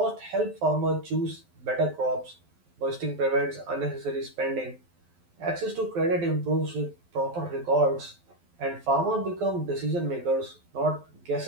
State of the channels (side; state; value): left; late; 12 ms